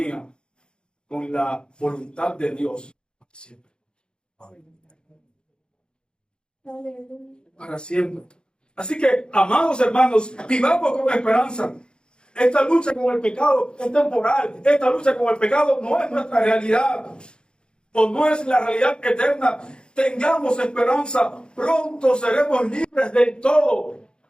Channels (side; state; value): right; late; 0.050 ms